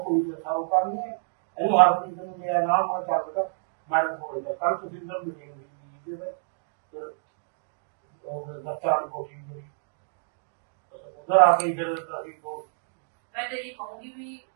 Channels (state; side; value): silent; left; digital silence